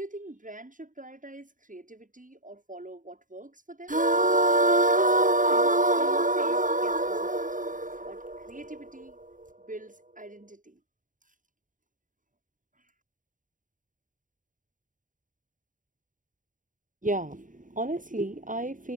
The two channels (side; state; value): left; late; 0.38 ms